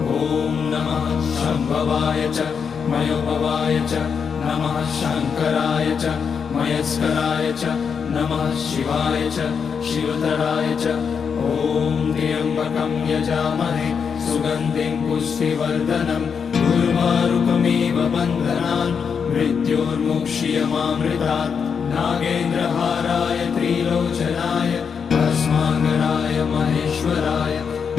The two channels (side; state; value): right; quieter; 6.4 dB